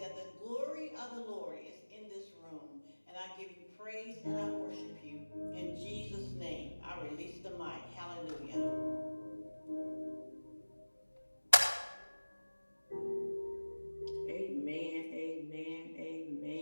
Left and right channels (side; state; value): both; inverted; correlation -1.00